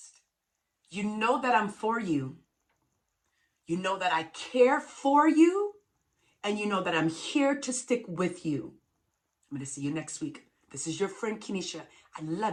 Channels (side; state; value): both; identical; correlation 1.00